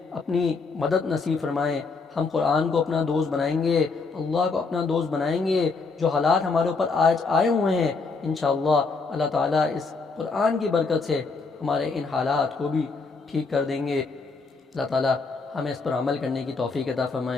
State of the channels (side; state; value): right; quieter; 4.3 dB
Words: اپنی مدد نصیب فرمائیں۔ ہم قرآن کو اپنا دوست بنائیں گے، اللہ کو اپنا دوست بنائیں گے۔ جو حالات ہمارے اوپر آج آئے ہوئے ہیں انشاءاللہ اللہ تعالی اس قرآن کی برکت سے ہمارے ان حالات کو بھی ٹھیک کر دیں گے۔ اللہ تعالی ہمیں اس پر عمل کرنے کی توفیق عطا